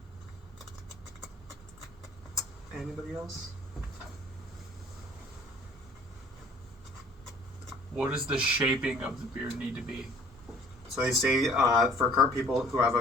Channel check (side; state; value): both; normal; correlation 0.52